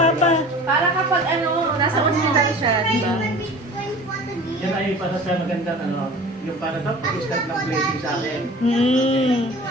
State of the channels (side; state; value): both; normal; correlation 0.42